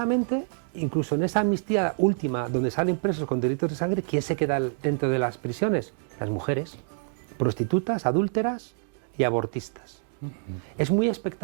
incluso en esa amnistía última donde salen presos con delitos de sangre, ¿quién se queda dentro de las prisiones? Las mujeres, prostitutas, adúlteras y abortistas. Es muy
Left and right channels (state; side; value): silent; left; digital silence